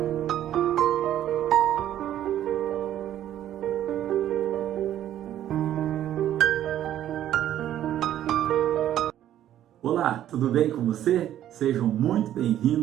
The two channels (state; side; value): quieter; left; 11.8 dB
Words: Olá, tudo bem com você? Sejam muito